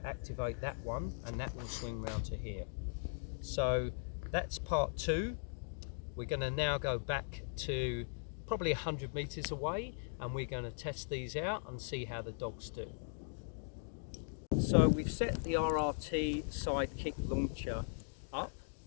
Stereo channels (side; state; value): right; silent; digital silence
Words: activate that one, and that will swing round to here. So that's part two. We're going to now go back to probably 100 meters away, and we're going to test these out and see how the dogs do. So we've set the RRT Sidekick Launcher up,